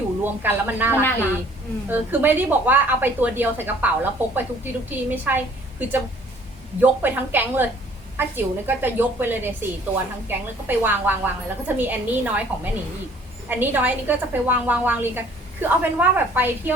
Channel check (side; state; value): both; normal; correlation 0.56